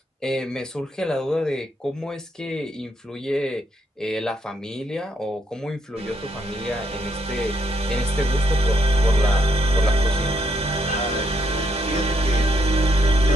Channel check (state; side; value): normal; both; correlation 0.75